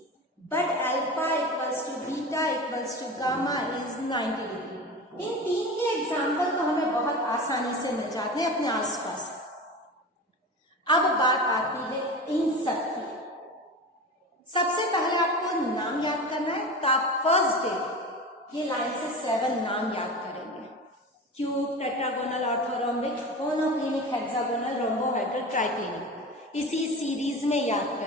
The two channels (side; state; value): both; normal; correlation 0.30